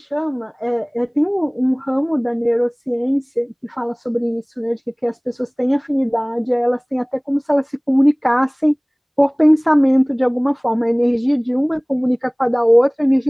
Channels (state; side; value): identical; both; correlation 1.00